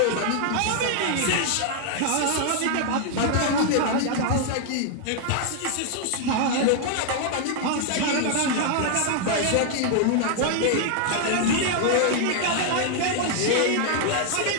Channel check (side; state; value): both; different; correlation 0.00